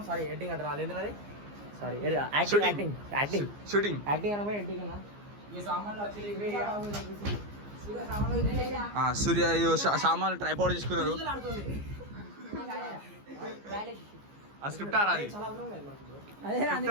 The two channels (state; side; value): late; left; 15 ms